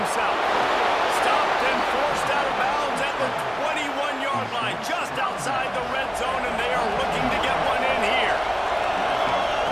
Stopped and forced out of bounds at the 21-yard line, just outside the red zone, and they are looking to get one in here.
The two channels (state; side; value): identical; both; correlation 1.00